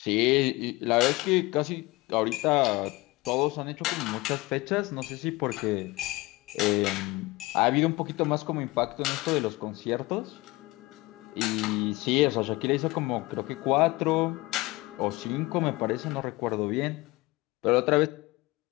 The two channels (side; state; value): right; quieter; 21.8 dB